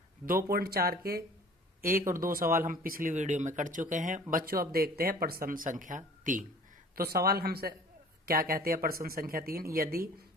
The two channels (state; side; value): normal; both; correlation 0.48